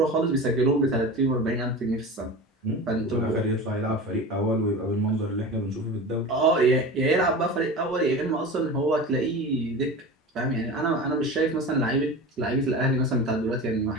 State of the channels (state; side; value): normal; both; correlation 0.32